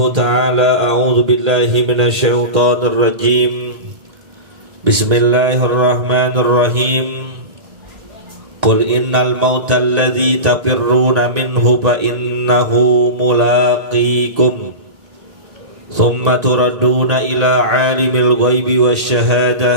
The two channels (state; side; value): late; left; 1.9 ms